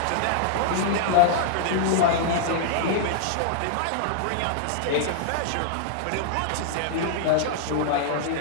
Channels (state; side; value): different; both; correlation -0.01